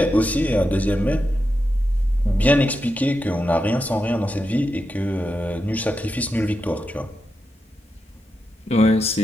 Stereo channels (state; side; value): normal; both; correlation 0.87